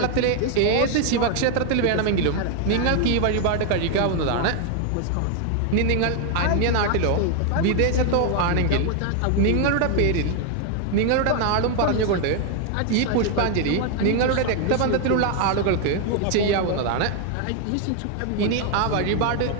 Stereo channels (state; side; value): different; both; correlation 0.00